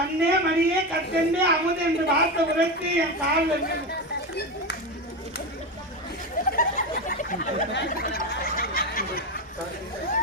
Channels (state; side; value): normal; both; correlation 0.18